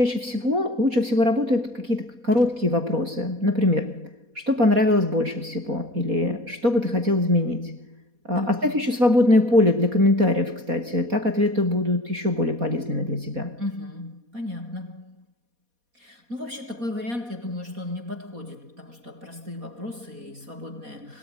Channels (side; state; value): left; late; 4.2 ms